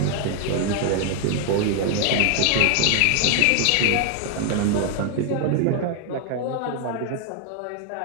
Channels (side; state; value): both; different; correlation 0.00